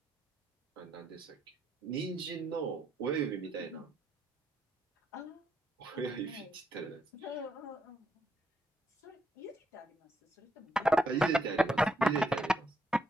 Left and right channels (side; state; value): both; normal; correlation 0.76